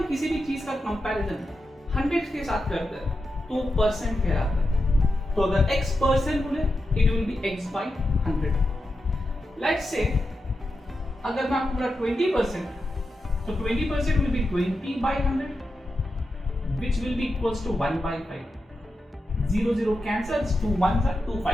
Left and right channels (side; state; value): both; normal; correlation 0.89